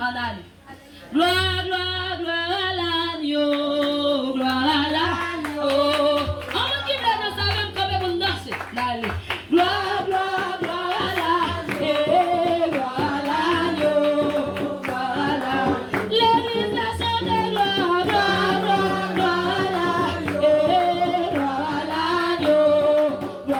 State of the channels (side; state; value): both; identical; correlation 1.00